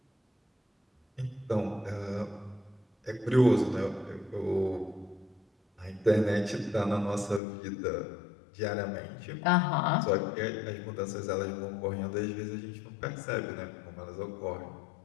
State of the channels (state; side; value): drops out; right; at 7.4 s